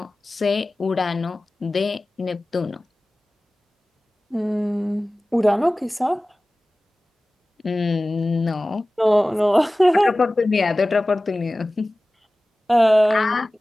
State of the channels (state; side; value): normal; both; correlation 0.97